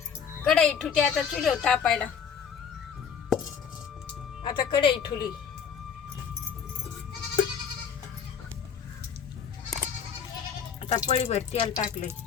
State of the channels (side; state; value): right; quieter; 7.1 dB